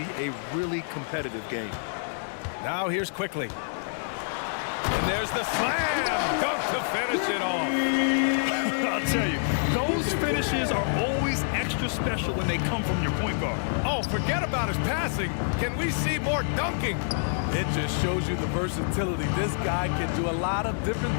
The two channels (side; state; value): right; silent; digital silence